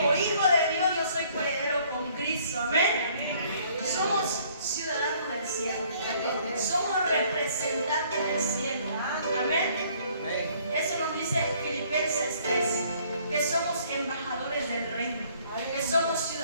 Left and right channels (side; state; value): both; inverted; correlation -0.61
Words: hijo de Dios yo soy coheredero con Cristo. Amén. Somos ciudadanos del cielo. Somos representantes del cielo. Amén. Eso nos dice Filipenses 3, que somos embajadores del reino, que somos